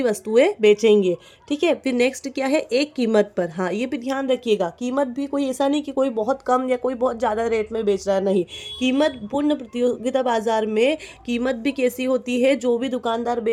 वस्तुएं बेचेंगे। ठीक है। फिर नेक्स्ट क्या है, एक कीमत पर। हाँ, ये भी ध्यान रखिएगा, कीमत भी कोई ऐसा नहीं कि कोई बहुत कम या कोई बहुत ज़्यादा रेट में बेच रहा है, नहीं। कीमत पूर्ण प्रतियोगिता बाजार में कीमत भी कैसी होती है, जो भी दुकानदार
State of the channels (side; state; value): both; identical; correlation 1.00